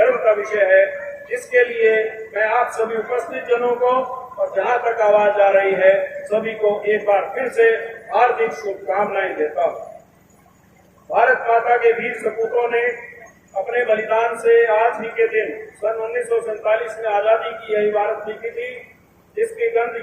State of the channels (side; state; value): both; identical; correlation 1.00